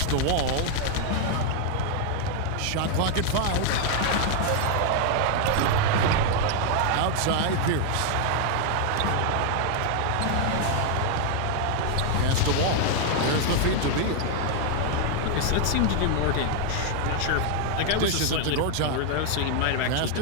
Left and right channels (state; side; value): different; both; correlation 0.00